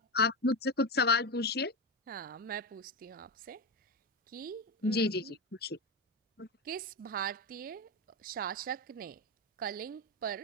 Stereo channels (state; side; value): normal; both; correlation 0.14